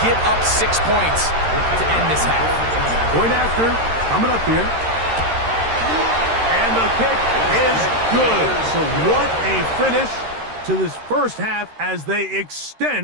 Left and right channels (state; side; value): late; left; 13 ms